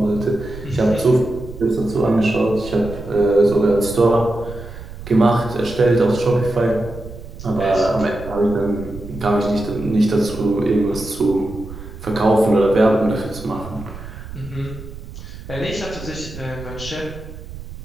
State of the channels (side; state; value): right; noise; rumble, 13 dB below the sound